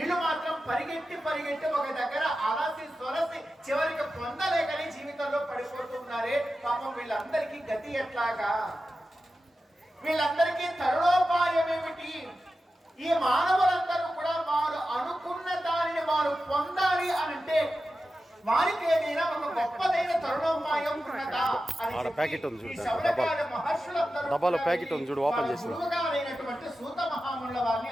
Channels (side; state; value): both; normal; correlation 0.92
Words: మాత్రం పరిగెట్టి ఒక దగ్గర అలసి సొలసి చివరికి పొందలేకని జీవితంలో పడిపోతున్నారే. పాపం వీళ్ళందరికీ గతి ఎట్లాగా? వీళ్ళందరికీ తరుణోపాయం ఏమిటి? ఈ మానవులందరూ కూడా వారు అనుకున్న దానిని వారు పొందాలి అనంటే వారికి ఏదైనా ఒక గొప్పదైన తరుణోపాయం ఉన్నదా అని డబ్బాలో ప్యాకెట్ ఉంది చూడు, ఓపెన్ చేసి గురువుగారైనటువంటి సూత మహామునుల వారిని